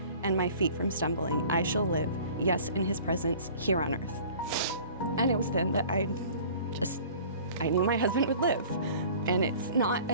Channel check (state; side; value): inverted; both; correlation -0.47